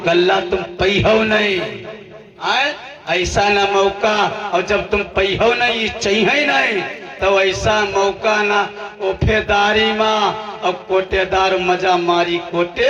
गल्ला तुम पई हो नहीं, ऐसा ना मौका, और जब तुम पई हो नहीं ये चाहिए नहीं तो ऐसा मौका ना ओफेदारी माँ और कोटेदार मजा मारी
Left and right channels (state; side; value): identical; both; correlation 1.00